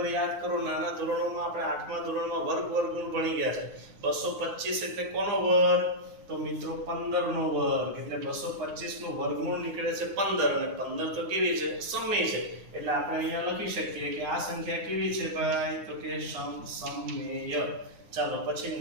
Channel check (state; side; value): late; left; 9.6 ms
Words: યાદ કરો નાના ધોરણોમાં આપણે 8મા ધોરણમાં વર્ગમૂળ ભણી ગયા છે 225 એટલે કોનો વર્ગ તો મિત્રો 15 નો વર્ગ એટલે 225 નું વર્ગમૂળ નીકળે છે 15 અને 15 તો કેવી છે સમય છે એટલે આપણે અહીંયા લખી શકીએ કે આ સંખ્યા કેવી છે ભાઈ તો કે સમમેય ચાલો પછી